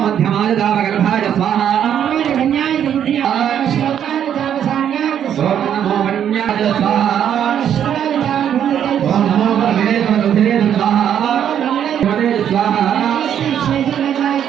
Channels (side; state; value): left; quieter; 9.4 dB